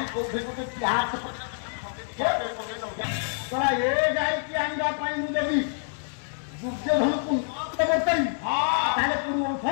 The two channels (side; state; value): right; silent; digital silence